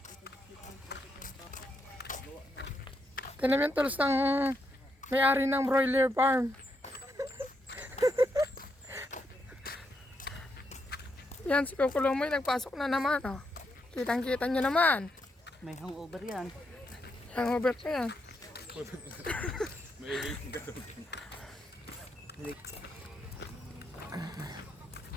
Ito naman tulos ng may-ari ng broiler farm. Yan, si Kukulomoy nagpasok na naman. Oh. Kitang-kita nyo naman. May hangover yan. Hangover ka yan. May waiting ka doon.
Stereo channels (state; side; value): normal; both; correlation 0.80